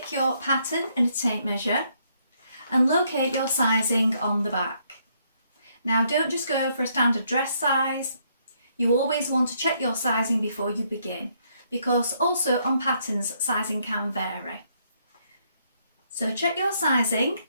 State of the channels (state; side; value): inverted; both; correlation -0.72